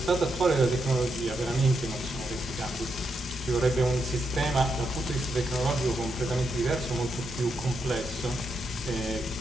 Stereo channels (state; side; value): normal; both; correlation 0.82